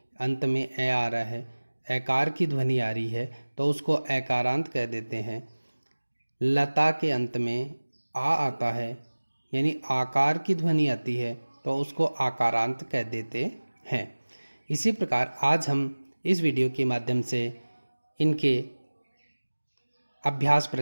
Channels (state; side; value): inverted; both; correlation -1.00